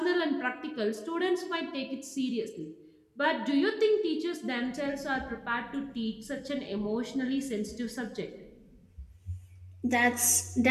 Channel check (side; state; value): both; identical; correlation 1.00